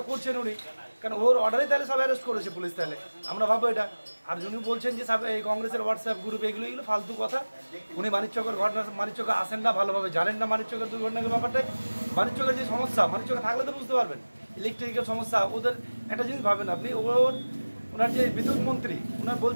করছেন উনি, কারণ ওর অর্ডারে তাহলে সব অ্যারেস্ট করেছে পুলিশ। তাহলে আমরা ভাববো এটা। আর উনি বলছেন যে এই কংগ্রেসের হোয়াটসঅ্যাপ গ্রুপ এগুলো ফালতু কথা। উনি মানিকচকের ঘটনা, মানিকচকে আসেন না, ভালোভাবে জানেন না মানিকচকের দুর্ঘটনার ব্যাপারটাই। মানিকচকের যে সমস্যা, মানিকচকে থাকলে তো বুঝতে পারবেন ইলেকট্রিক্যাল সমস্যা। ওদের একটা জিনিস ভাবেন আপনি, ওনার যে বিদ্যুৎ মন্ত্রী ওনার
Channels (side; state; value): both; inverted; correlation -1.00